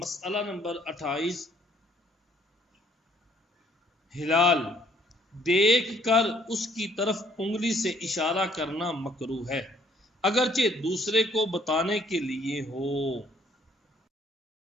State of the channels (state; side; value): normal; both; correlation 0.63